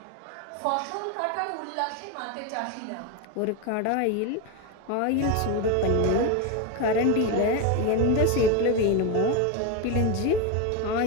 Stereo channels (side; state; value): both; different; correlation 0.03